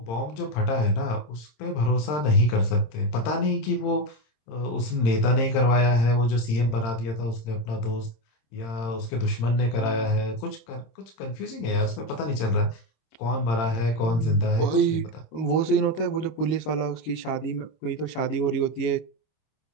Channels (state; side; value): late; right; 26 ms